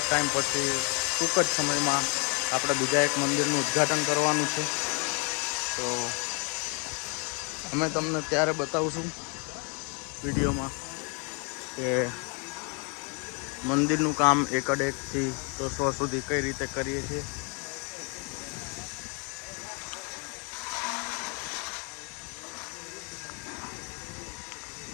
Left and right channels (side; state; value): right; quieter; 35.3 dB